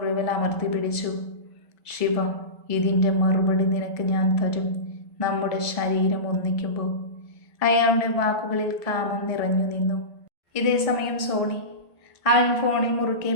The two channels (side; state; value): right; late; 1.5 ms